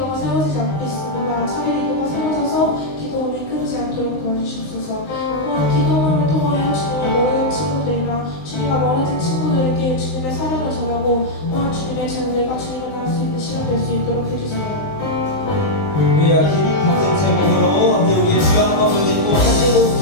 세워지지 않고 있습니다. 차기 리더가 세워져서 기도원이 끊이지 않도록 도와주시옵소서. 또한 기도원을 통하여 주님의 모든 친구들이나 주님과 멀어진 친구들에게 주님의 사랑을 전하고 또한 주님의 자녀들과 주님을 나갈 수 있는 시간 될 수 있도록 해주세요. 우리가 같은 제목으로 우리의 주여 한번 불리고 한제국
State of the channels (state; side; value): late; right; 19 ms